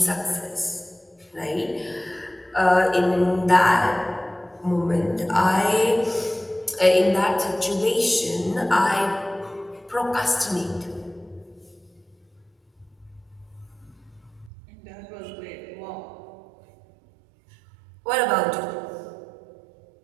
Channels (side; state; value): left; drops out; at 14.5 s